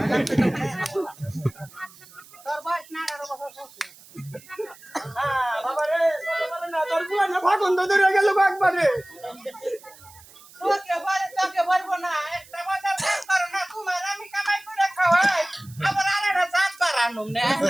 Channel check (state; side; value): noise; right; hiss, 23 dB below the sound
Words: তোর বয়স না 18 বছর হচ্ছে হ্যাঁ বাবা রে না তোর বুলা না ভাগন ধরে গেল একবারে তোকে বলবো না একটা বাজার কাজ করো না তোমার আমি কামাই করে খাওয়াই আবার আরেকটা জাত বাড়ানো না